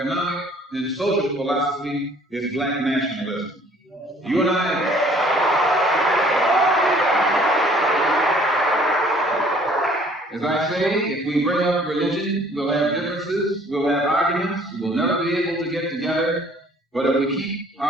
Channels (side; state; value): both; normal; correlation 0.57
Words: and social philosophy is black nationalism. You and I... As I say, if we bring up religion, we'll have differences, we'll have arguments, we'll never be able to get together. But if we keep